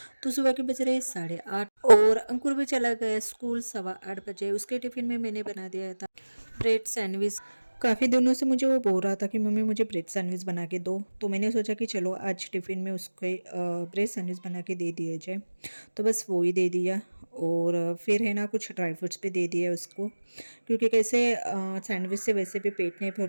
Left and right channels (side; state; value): both; inverted; correlation -1.00